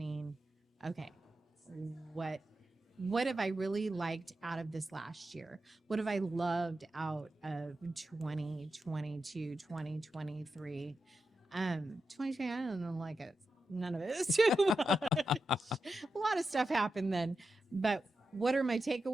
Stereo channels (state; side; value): normal; both; correlation 0.89